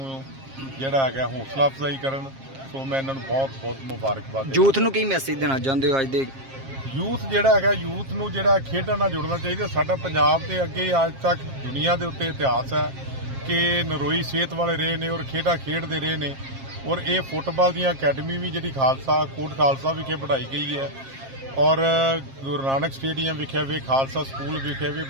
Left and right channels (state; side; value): late; left; 7.5 ms